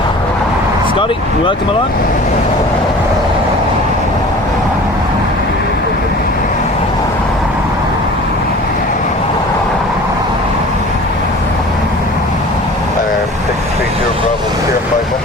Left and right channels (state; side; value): normal; both; correlation 0.43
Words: Scotty, welcome along.